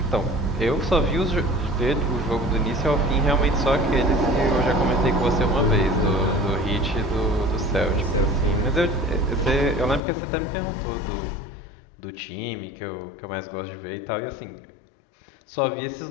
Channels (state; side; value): drops out; right; at 10.0 s